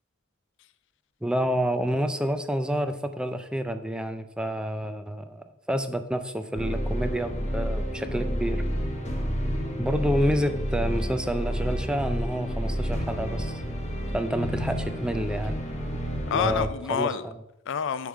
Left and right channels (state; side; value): normal; both; correlation 0.78